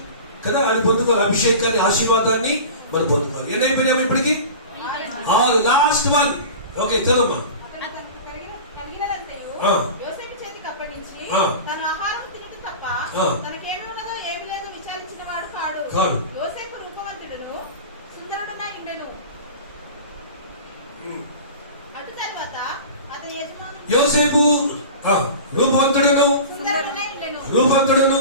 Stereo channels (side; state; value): both; inverted; correlation -0.35